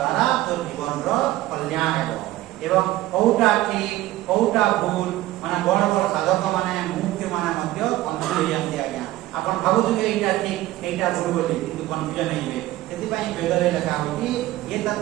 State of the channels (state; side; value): quieter; left; 16.1 dB